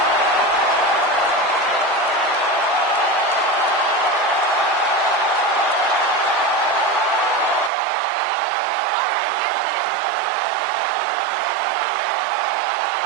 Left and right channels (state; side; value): drops out; left; at 7.7 s